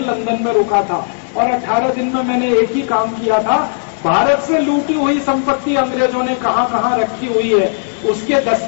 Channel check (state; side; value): silent; right; 70 dB below the other